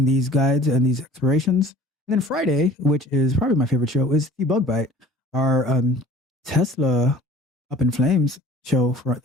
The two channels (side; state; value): both; normal; correlation 0.47